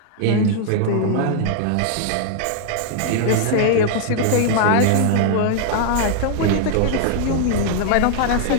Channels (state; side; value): different; both; correlation 0.00